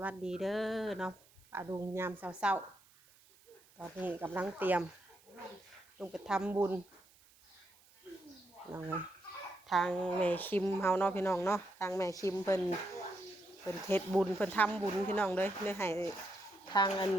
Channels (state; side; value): noise; right; hiss, 28 dB below the sound